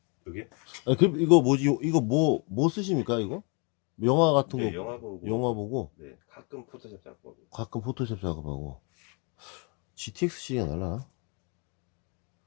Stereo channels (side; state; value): right; quieter; 33.8 dB